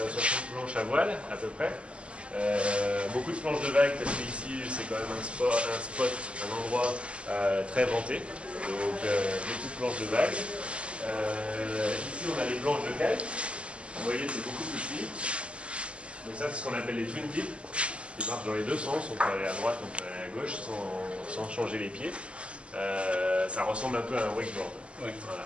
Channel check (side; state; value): left; late; 0.056 ms